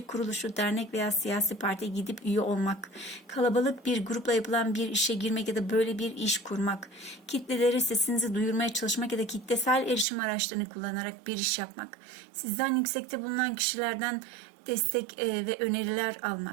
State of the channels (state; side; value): drops out; left; at 10.1 s